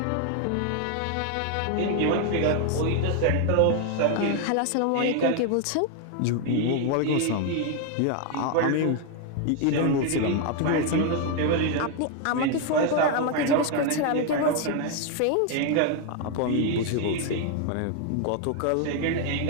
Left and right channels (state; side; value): different; both; correlation 0.01